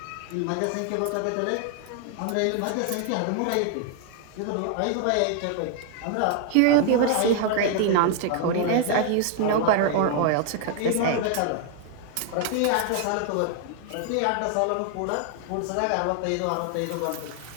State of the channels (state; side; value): different; both; correlation 0.00